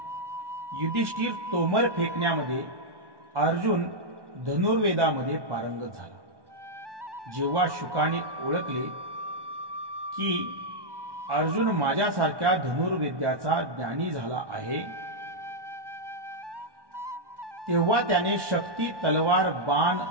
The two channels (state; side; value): late; left; 1.1 ms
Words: युधिष्ठिर तोमर फेकण्यामध्ये, अर्जुन धनुर्वेदामध्ये पारंगत झाला. जेव्हा शुकाने ओळखले की अर्जुन माझ्यासारख्या धनुर्विद्याचा ज्ञानी झाला आहे, तेव्हा त्याने शक्ती, तलवार, बाण,